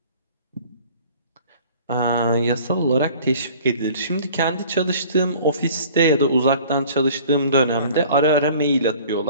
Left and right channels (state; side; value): inverted; both; correlation -0.49